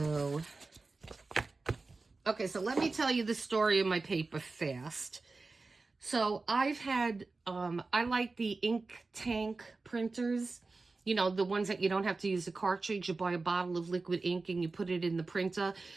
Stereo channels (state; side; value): quieter; left; 3.7 dB